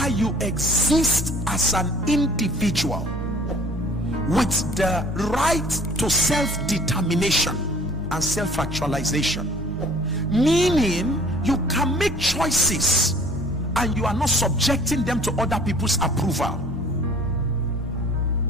you exist as an individual with the right to self-determination and self-actualization, meaning you can make choices and you are not subjecting them to other people's approval,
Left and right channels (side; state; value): both; normal; correlation 0.51